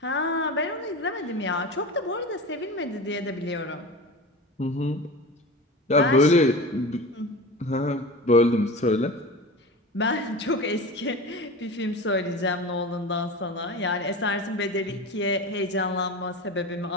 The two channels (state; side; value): normal; both; correlation 0.30